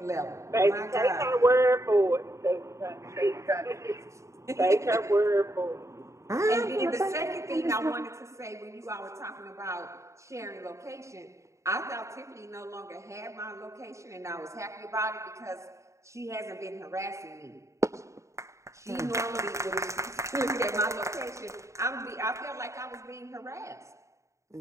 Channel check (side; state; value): left; late; 0.14 ms